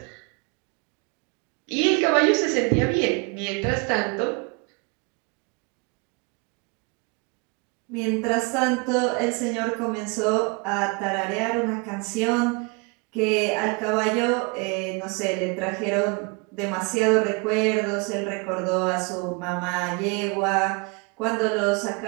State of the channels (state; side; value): quieter; left; 30.8 dB